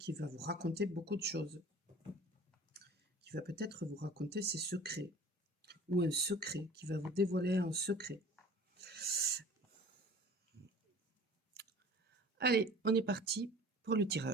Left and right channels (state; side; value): normal; both; correlation 0.45